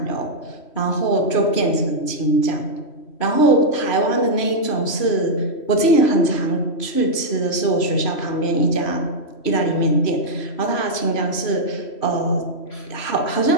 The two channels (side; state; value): right; late; 3.1 ms